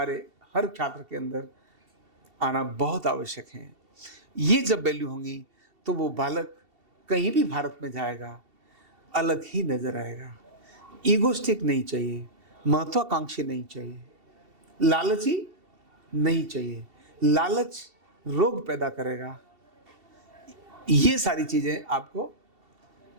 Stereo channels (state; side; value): late; left; 2.7 ms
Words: हर छात्र के अंदर आना बहुत आवश्यक हैं। ये जब वैल्यू होंगी तो वो बालक कहीं भी भारत में जाएगा अलग ही नजर आएगा। ईगोस्टिक नहीं चाहिए, महत्वाकांक्षी नहीं चाहिए, लालची नहीं चाहिए। लालच रोग पैदा करेगा। ये सारी चीजें आपको